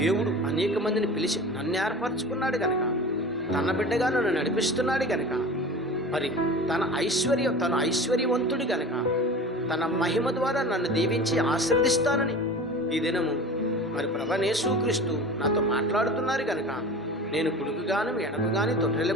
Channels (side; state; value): both; normal; correlation 0.36